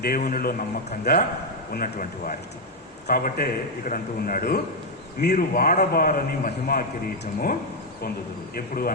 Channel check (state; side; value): normal; both; correlation 0.01